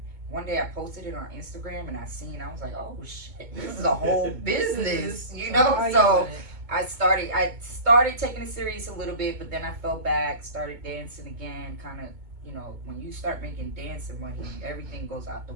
one day I posted it on Instagram, and I was like, oh shit, this is a whole business, you know? So I started taking it serious a little bit, but then I fell back, started dancing again, kind of, you know, when you start making dancing money, everything goes out the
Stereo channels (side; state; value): left; late; 2.2 ms